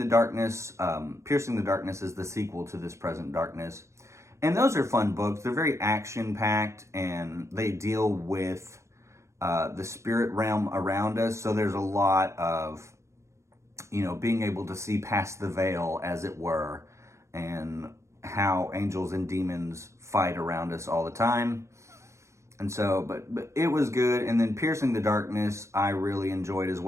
Darkness. Piercing the Darkness is the sequel to This Present Darkness. And those are fun books. They're very action-packed, and they deal with the spirit realm around us. So there's a lot of, being able to see past the veil, as it were, and how angels and demons fight around us all the time. And so, but it was good. And then Piercing the Darkness, I really enjoyed as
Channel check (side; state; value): left; late; 0.14 ms